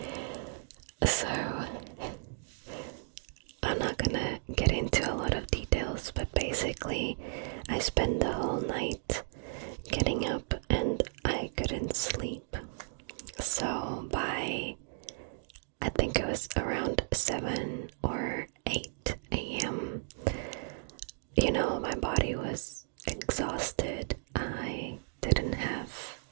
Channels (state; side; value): silent; left; digital silence